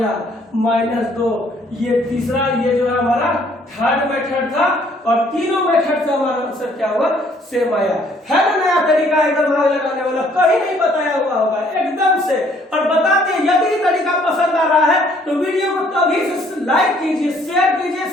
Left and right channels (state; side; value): normal; both; correlation 0.62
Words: -2। ये तीसरा, ये जो है हमारा थर्ड मेथड था, और तीनों मेथड से हमारा आंसर क्या हुआ, सेम आया है ना। नया तरीका एकदम आग लगाने वाला, कहीं नहीं बताया हुआ होगा एकदम से। और बताते यदि तरीका पसंद आ रहा है तो वीडियो को तभी से लाइक कीजिए, शेयर कीजिए,